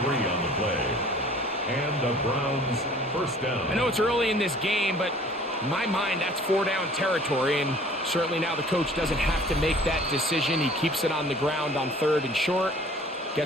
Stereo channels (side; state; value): both; normal; correlation 0.51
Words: 3 on the play. And the Browns first down. I know it's early in this game, but in my mind, that's 4-down territory, and certainly now the coach doesn't have to make that decision. He keeps it on the ground on 3rd and short,